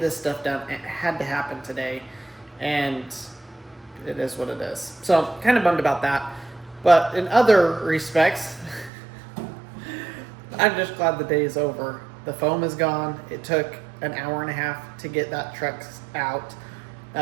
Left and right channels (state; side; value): drops out; left; at 8.9 s